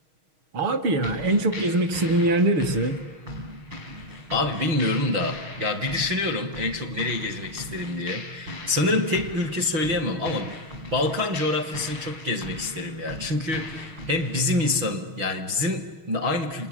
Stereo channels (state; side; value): late; left; 6.3 ms